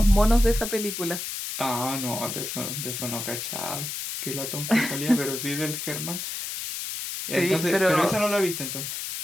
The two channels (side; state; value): left; noise; hiss, 5 dB below the sound